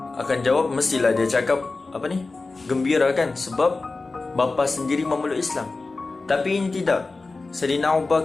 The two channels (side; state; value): right; quieter; 3.6 dB